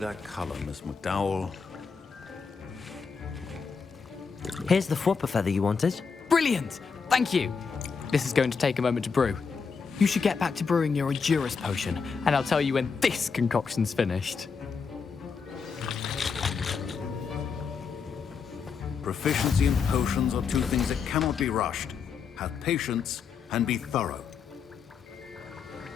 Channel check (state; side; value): quieter; right; 5.6 dB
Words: color, Miss McDowell. Here's the Fwooper feather you wanted. Brilliant! Thank you! This is going to take a moment to brew. You should get back to brewing your Endurance potion, and I'll tell you when this concoction's finished. Proficiency and potions are two things that cannot be rushed. Have patience and be thorough.